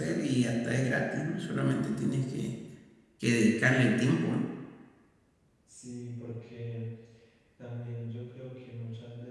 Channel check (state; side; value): identical; both; correlation 1.00